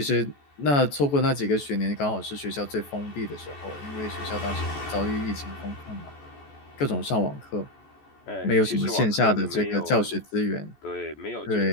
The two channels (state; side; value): late; right; 14 ms